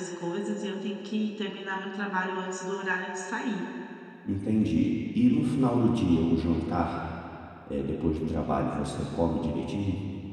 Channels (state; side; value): identical; both; correlation 1.00